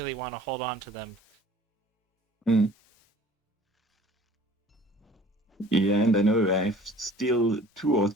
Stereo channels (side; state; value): both; normal; correlation 0.49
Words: want to hold on to them. Mm. Yeah, and I know I have still 2 or